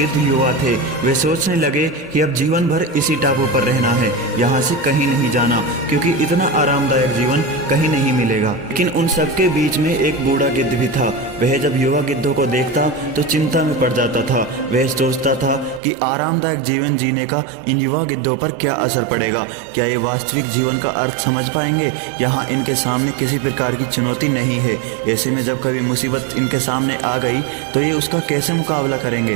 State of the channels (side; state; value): left; drops out; at 15.8 s